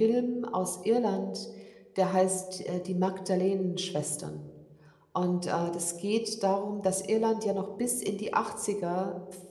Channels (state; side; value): identical; both; correlation 1.00